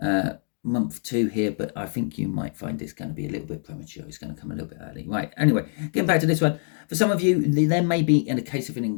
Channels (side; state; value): right; silent; 62 dB below the other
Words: month 2 here, but I think you might find it's going to be a little bit premature. It's going to come a little bit early. Right, anyway, getting back to this one. For some of you, there may be, in a case of an